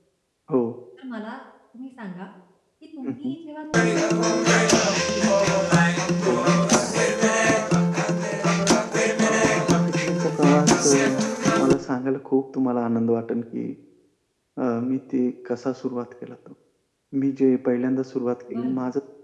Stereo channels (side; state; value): both; identical; correlation 1.00